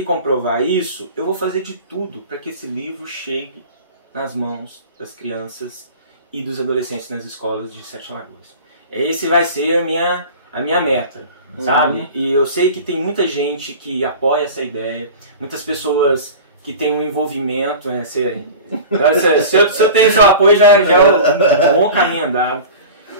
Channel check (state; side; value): inverted; both; correlation -0.36